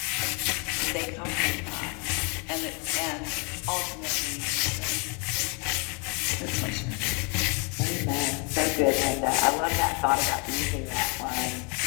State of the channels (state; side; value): quieter; right; 34.2 dB